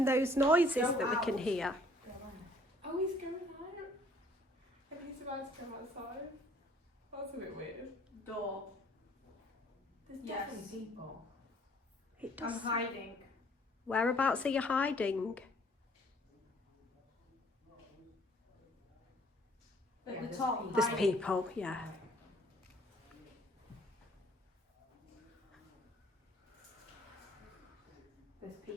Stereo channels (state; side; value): normal; both; correlation 0.59